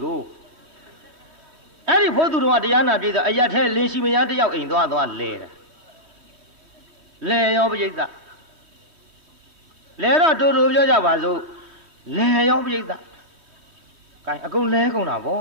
艾丽跑土着话，这样那边的，哎呀，他联系没人，这要印多少来了，来要不就的。来了周表家话说，来要不一个，干阿公来公那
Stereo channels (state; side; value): late; left; 3.2 ms